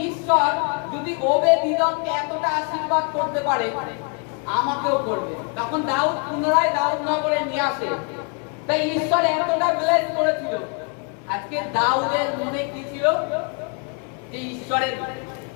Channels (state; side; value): quieter; right; 36.3 dB